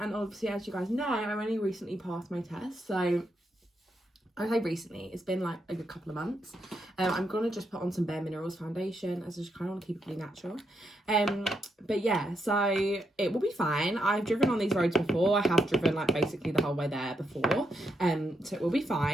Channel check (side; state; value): both; normal; correlation 0.81